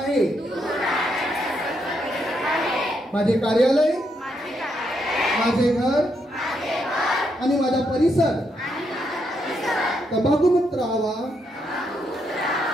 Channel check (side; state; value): both; normal; correlation 0.78